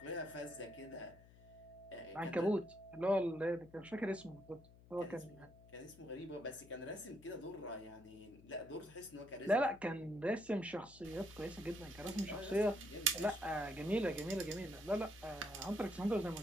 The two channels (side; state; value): left; noise; hum, 22 dB below the sound